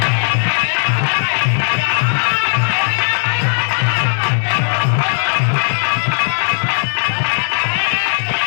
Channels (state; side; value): silent; right; digital silence